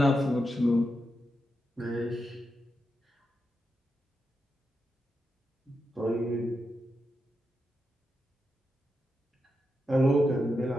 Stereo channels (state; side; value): normal; both; correlation 0.87